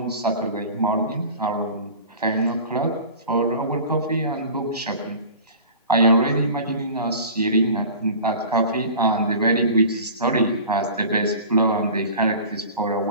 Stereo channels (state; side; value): inverted; both; correlation -0.39